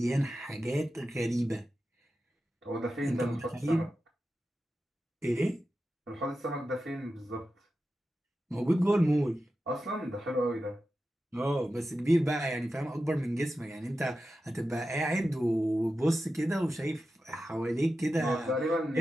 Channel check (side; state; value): both; normal; correlation 0.92